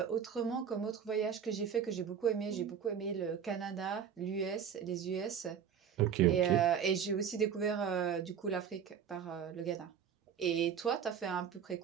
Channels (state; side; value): quieter; left; 7.8 dB